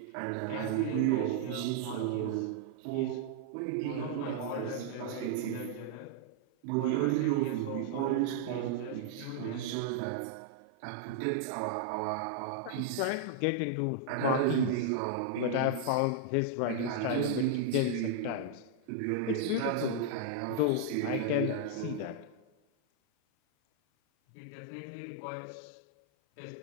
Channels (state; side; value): different; both; correlation -0.01